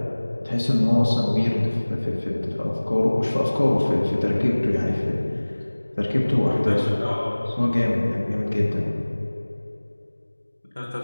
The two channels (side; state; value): both; inverted; correlation -1.00